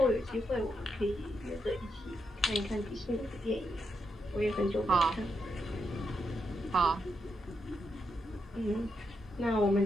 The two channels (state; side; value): normal; both; correlation 0.82